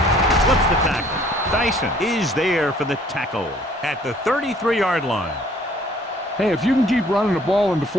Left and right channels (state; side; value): normal; both; correlation 0.58